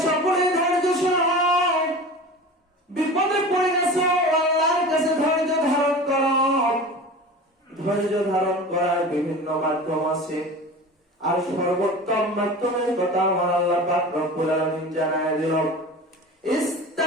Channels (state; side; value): normal; both; correlation 0.35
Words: সকলেই ধৈর্যশীল হও। বিপদে পড়ে গেছো, আল্লাহর কাছে ধৈর্য ধারণ করো। ধৈর্য ধারণ করার বিভিন্ন মাধ্যম আছে, আর সর্বোত্তম মাধ্যমের কথা আমার আল্লাহ পাক রব্বুল আলামিন জানায় দিলেন,